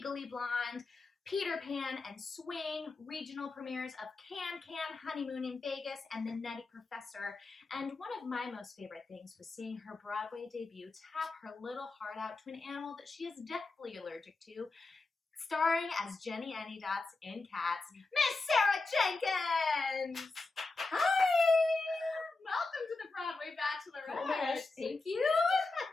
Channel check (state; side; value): quieter; right; 3.6 dB